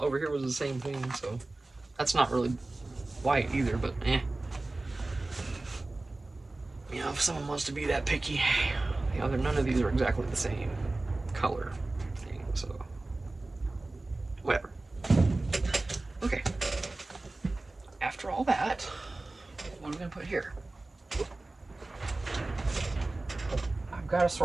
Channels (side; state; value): left; quieter; 3.0 dB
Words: over here was the same thing, so that's not really white either, but eh. You know, if someone wants to be that picky, you know, none of these are exactly the same color thing, so whatever. Okay. After all that, what are we gonna put here? I've got to